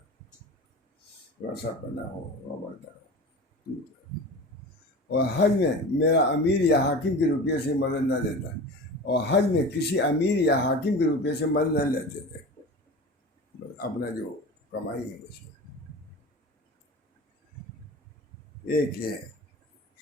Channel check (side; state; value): both; normal; correlation 0.33